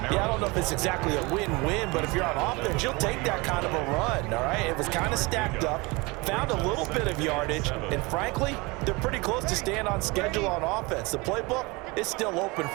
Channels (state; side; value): quieter; left; 25.2 dB